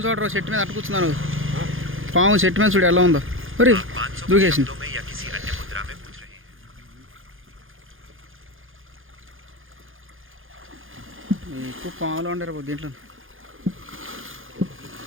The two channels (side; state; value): left; late; 0.59 ms